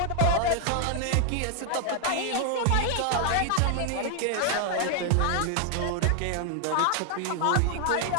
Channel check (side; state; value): both; different; correlation 0.00